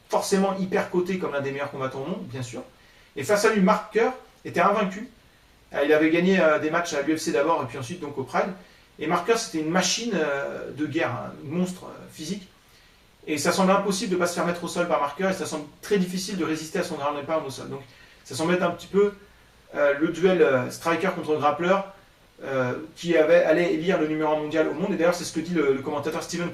forcément hyper coté comme l'un des meilleurs combattants au monde, bien sûr. Et face à lui, Mark Kerr était invaincu. Il avait gagné des matchs à l'UFC d'abord et puis ensuite donc au Pride. Et Mark Kerr, c'était une machine de guerre, un monstre physique. Et ça semble impossible de ne pas se faire mettre au sol par Mark Kerr et ça semble très difficile de résister à son ground and pound au sol. Donc ça semble être un petit peu le duel striker contre grappler qui allait élire le numéro 1 mondial au monde. Et d'ailleurs, c'est ce que dit le commentateur Steven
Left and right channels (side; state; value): both; identical; correlation 1.00